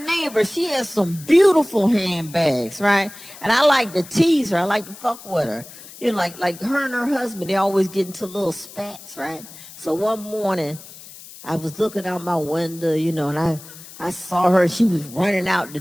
she has some beautiful handbags, right? And I like to tease her. I like to fuck with her. You know, like her and her husband, they always get into little spats, right? So one morning, I was looking out my window, you know, and I saw her. She was running out the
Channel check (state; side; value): noise; left; hiss, 17 dB below the sound